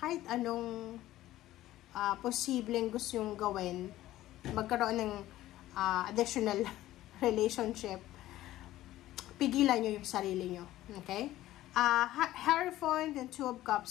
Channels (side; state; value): right; quieter; 15.0 dB